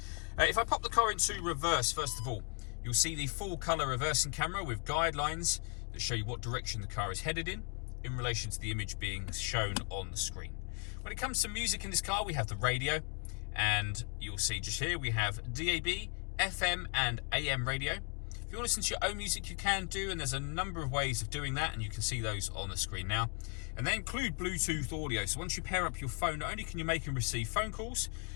If I pop the car into reverse, first of all, you'll see the full color reversing camera with guidelines that show you what direction the car is headed in relation to the image being shown on the screen. When it comes to music in this car, we have the radio, and you'll see just here we have DAB, FM and AM radio. If you want to listen to your own music, you can do, and there's a number of ways of doing that, and you can see those on the screen now. And they include Bluetooth audio, so once you pair up your phone, not only can you make and receive phone calls,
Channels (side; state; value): right; quieter; 39.5 dB